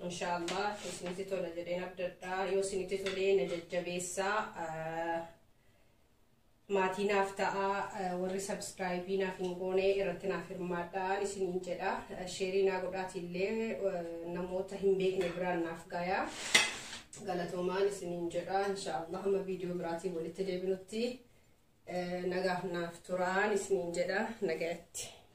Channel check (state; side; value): identical; both; correlation 1.00